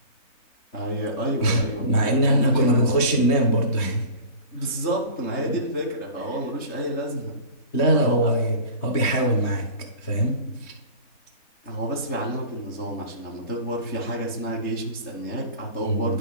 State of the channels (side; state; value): right; late; 3.2 ms